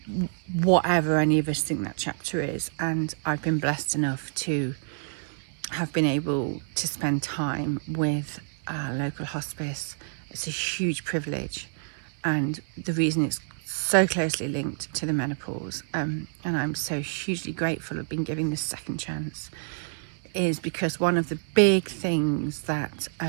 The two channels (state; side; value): silent; left; digital silence